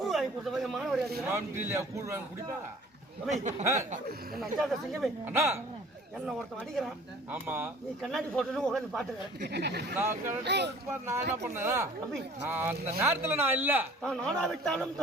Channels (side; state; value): both; normal; correlation 0.50